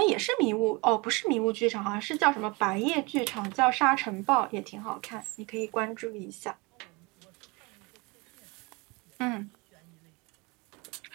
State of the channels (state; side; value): quieter; left; 26.7 dB